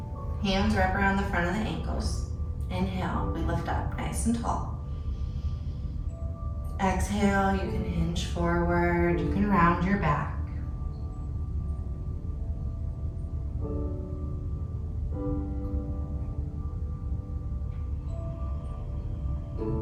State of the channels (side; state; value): both; identical; correlation 1.00